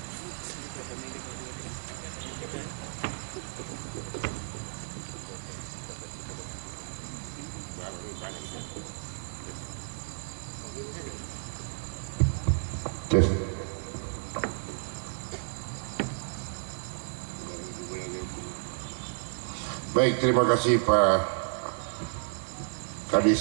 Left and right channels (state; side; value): silent; left; digital silence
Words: baik, terima kasih Pak